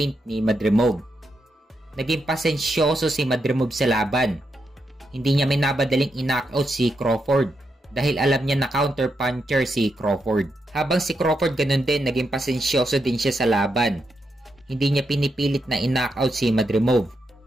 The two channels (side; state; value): both; normal; correlation 0.83